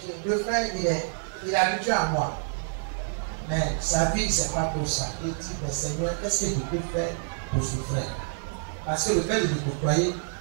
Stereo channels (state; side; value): silent; left; 60 dB below the other